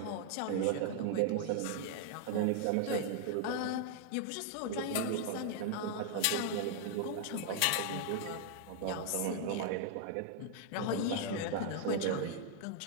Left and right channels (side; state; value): both; different; correlation 0.00